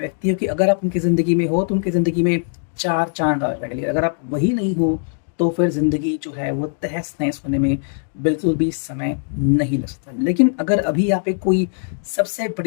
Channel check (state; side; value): silent; right; digital silence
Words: हो कि अगर आप उनकी ज़िंदगी में हो तो उनकी ज़िंदगी में चार चांद आ जाएंगे। अगर आप वही नहीं हो तो फिर ज़िंदगी जो है वो तहस नहस होने में बिल्कुल भी समय नहीं लग सकता। लेकिन अगर अभी यहाँ पे कोई सबसे